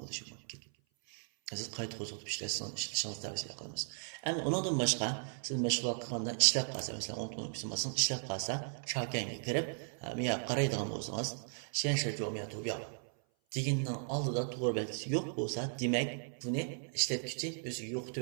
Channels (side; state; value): left; silent; 53 dB below the other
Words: bo'lishi mumkin. Siz qayta qo'zg'atib ishlashingizni tavsiya qilamiz. Endi undan boshqa siz mashg'ulot qilganda ishlab qolsa, masalan, 10 kun qismasin ishlab qolsa, shakanga kirib, men qaraydigan bo'lsangiz, shenshi jo'miya to'biya deganning oldida to'g'ri belgisi yo'q bo'lsa, demak, buni ishlatuvchi o'zi